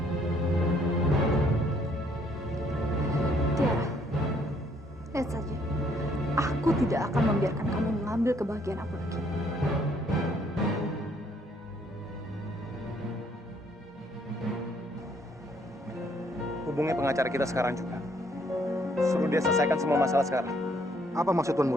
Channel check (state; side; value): normal; both; correlation 0.66